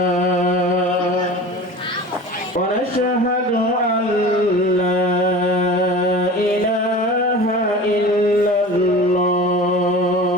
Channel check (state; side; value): normal; both; correlation 0.36